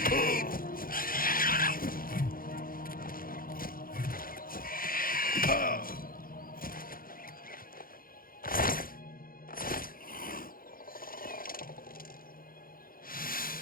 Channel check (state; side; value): late; right; 0.42 ms